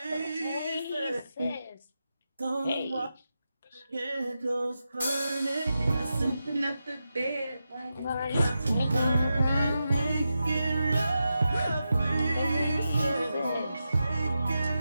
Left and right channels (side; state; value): both; inverted; correlation -0.89